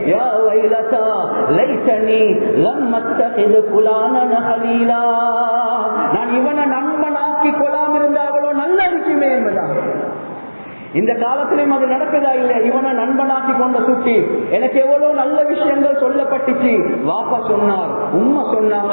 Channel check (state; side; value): inverted; both; correlation -1.00